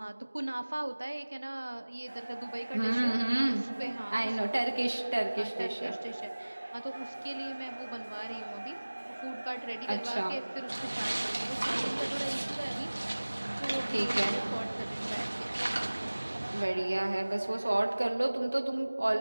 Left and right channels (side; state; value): both; inverted; correlation -1.00